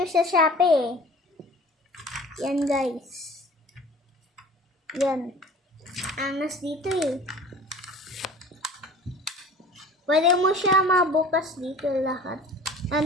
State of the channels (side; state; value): both; normal; correlation 0.43